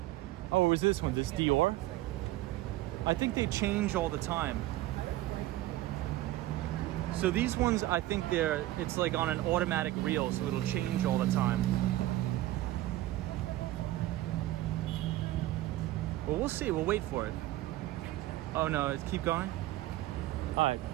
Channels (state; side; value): quieter; left; 16.0 dB